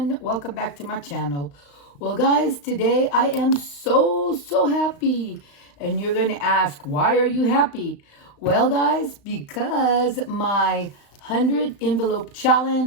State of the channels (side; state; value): right; late; 35 ms